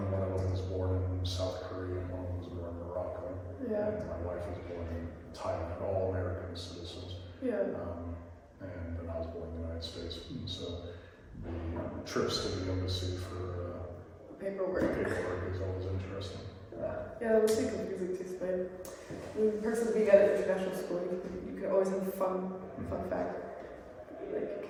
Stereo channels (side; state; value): both; identical; correlation 1.00